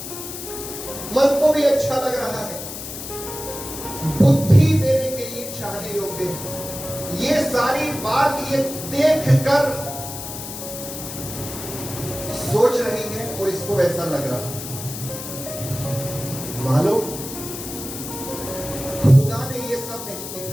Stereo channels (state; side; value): noise; left; hiss, 9 dB below the sound